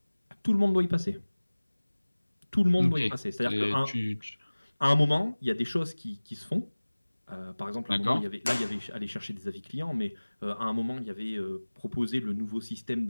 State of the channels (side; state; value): both; inverted; correlation -1.00